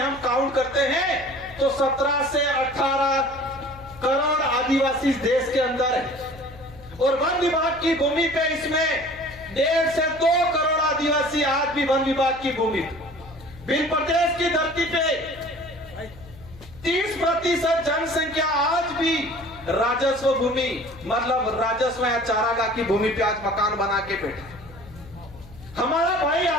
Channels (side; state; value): left; noise; hum, 19 dB below the sound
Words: हम काउंट करते हैं तो 17 से 18 करोड़ आदिवासी देश के अंदर है। और वन विभाग की भूमि पे इसमें 1.5 से 2 करोड़ आदिवासी आज भी वन विभाग की भूमि। भिल प्रदेश की धरती पे 30% जनसंख्या आज भी राजस्व भूमि, मतलब राजस्व या चारागाह की भूमि पे आज मकान बना के बैठे। हमारा भाई